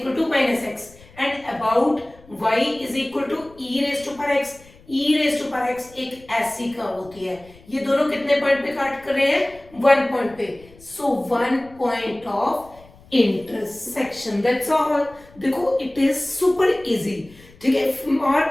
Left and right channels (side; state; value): left; noise; rumble, 25 dB below the sound